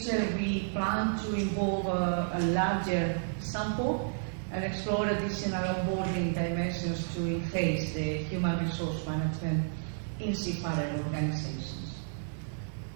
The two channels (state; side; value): silent; left; digital silence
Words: we plan to involve a larger sample and explore additional onboarding dimensions to enhance the human resource management in seafarer organizations.